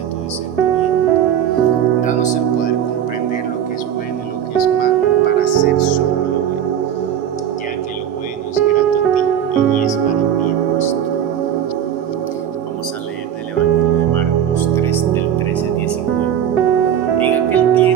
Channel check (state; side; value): quieter; left; 9.5 dB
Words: tu discernimiento. Danos el poder comprender lo que es bueno y lo que es malo para hacer solo lo bueno, ya que lo bueno es grato a ti y es para bien nuestro. Vamos a leer del Evangelio de Marcos 3, del 13 al 19. En aquel